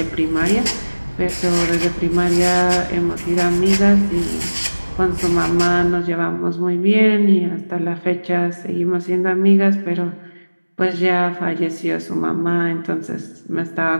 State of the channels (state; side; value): inverted; both; correlation -1.00